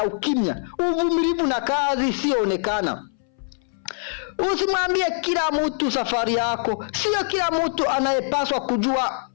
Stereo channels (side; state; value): right; silent; 61 dB below the other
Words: ukimya, uvumilivu na kazi isiyoonekana. Usimwambie kila mtu safari yako. Sio kila mtu anayepaswa kujua